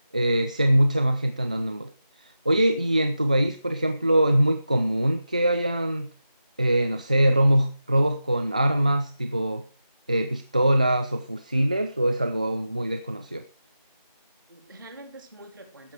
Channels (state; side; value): inverted; both; correlation -0.91